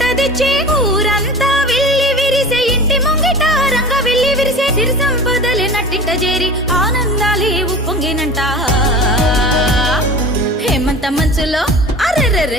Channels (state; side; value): normal; both; correlation 0.36